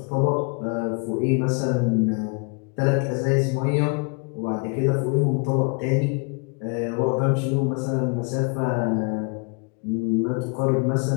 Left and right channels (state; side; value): quieter; right; 34.6 dB